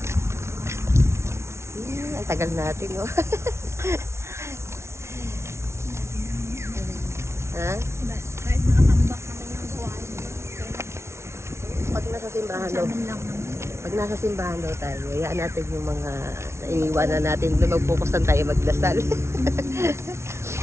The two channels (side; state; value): left; late; 0.13 ms